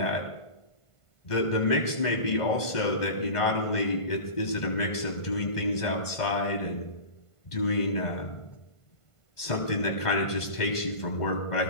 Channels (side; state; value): right; late; 1.5 ms